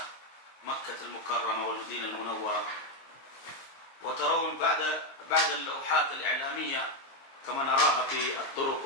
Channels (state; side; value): late; right; 22 ms